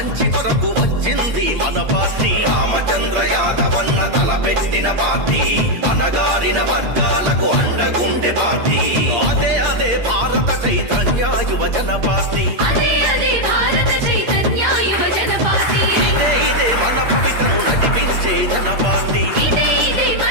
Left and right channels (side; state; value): left; late; 8.6 ms